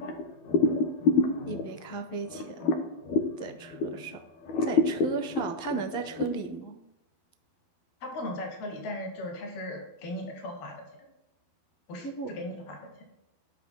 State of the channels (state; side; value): late; right; 11 ms